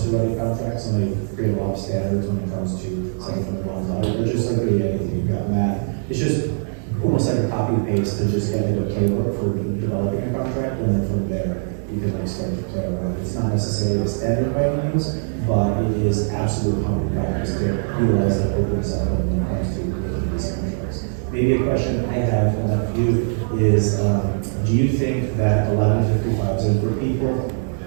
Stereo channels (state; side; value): silent; left; 63 dB below the other